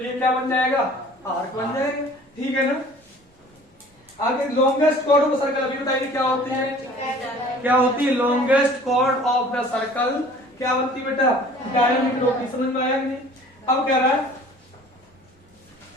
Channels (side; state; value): both; normal; correlation 0.49